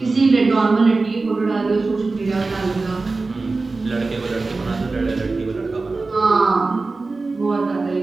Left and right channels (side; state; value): left; quieter; 3.7 dB